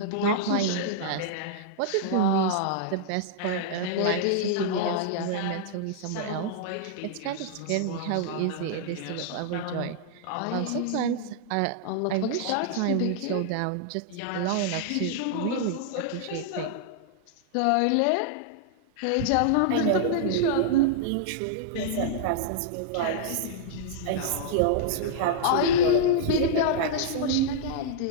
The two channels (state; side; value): different; both; correlation -0.02